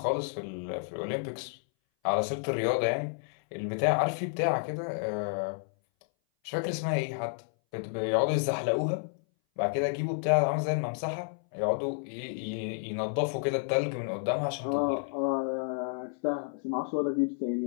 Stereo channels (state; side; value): silent; right; 57 dB below the other